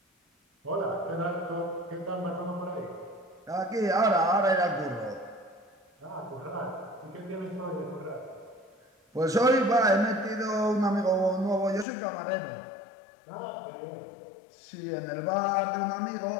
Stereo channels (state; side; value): drops out; right; at 11.9 s